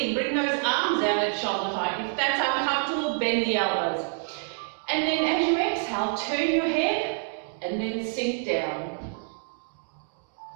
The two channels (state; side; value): silent; left; 58 dB below the other